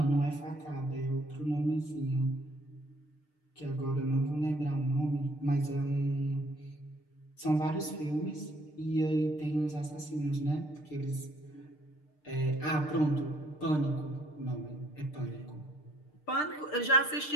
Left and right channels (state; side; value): late; right; 6.6 ms